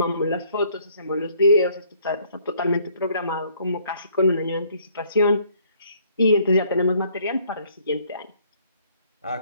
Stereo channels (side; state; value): both; inverted; correlation -0.63